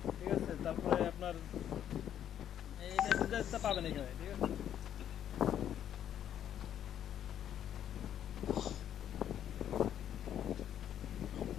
ঠিক আছে? তারপরে আপনার এখানে ডিটেইলসটা পাবেন এখানে, ঠিক আছে?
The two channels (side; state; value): right; quieter; 10.1 dB